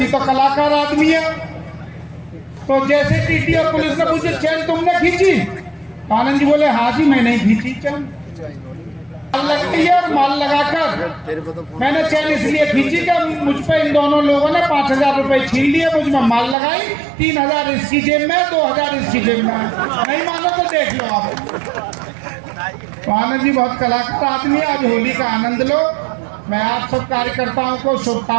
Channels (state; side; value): drops out; left; at 16.6 s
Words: तो कलाकार आदमी है, तो जैसे टीटी और पुलिस ने पूछे चैन तुमने खींची, तो आनंद जी बोले हाँ जी मैंने ही खींची चैन। माल लगती है और माल लगाकर मैंने चैन इसलिए खींची कि मुझ पे इन दोनों लोगों ने 5,000 रुपए छीन लिए, मुझ में माल लगाई, 3,000 इसकी जेब में, 2,000 इसकी जेब में। नहीं मानो तो देख लो आप। तो आनंद जी बहुत कलाकार आदमी है। आज होली का आनंद लो। मैं आप सब कार्यकर्ताओं को